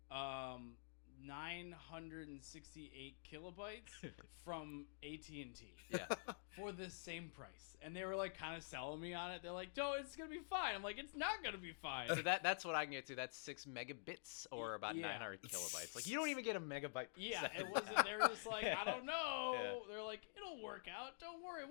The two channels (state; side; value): silent; right; digital silence